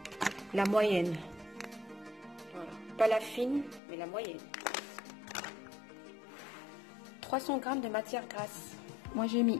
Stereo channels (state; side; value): drops out; right; at 3.8 s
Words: la moyenne, voilà. Pas la fine mais la moyenne. 300 g de matière grasse, moi j'ai